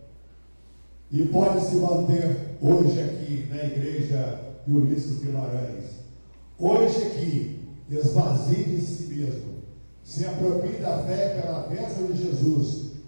e pode se manter hoje aqui na igreja de Ulisses Guimarães. Hoje aqui, esvazie de si mesmo, se aproprie da fé pela bênção de Jesus,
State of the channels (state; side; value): inverted; both; correlation -1.00